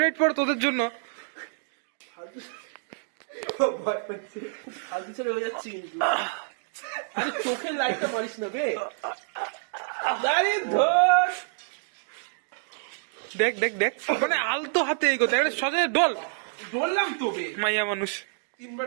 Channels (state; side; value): silent; left; digital silence